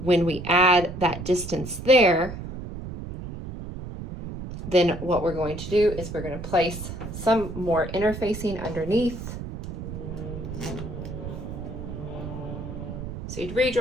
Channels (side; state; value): right; noise; rumble, 9 dB below the sound